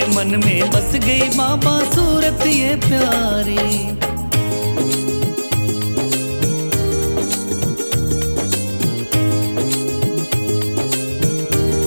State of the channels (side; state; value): both; inverted; correlation -1.00